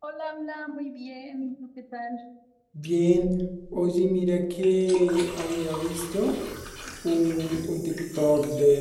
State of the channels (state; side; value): identical; both; correlation 1.00